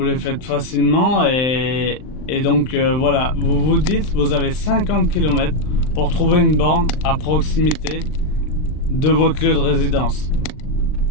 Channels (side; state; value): right; late; 39 ms